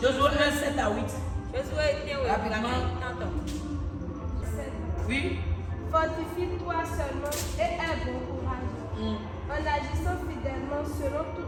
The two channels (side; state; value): both; identical; correlation 1.00